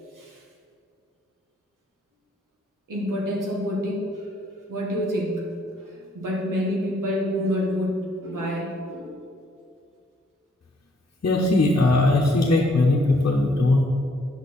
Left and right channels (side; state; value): both; normal; correlation 0.67